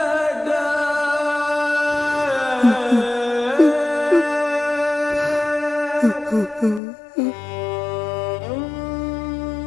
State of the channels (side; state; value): right; drops out; at 6.8 s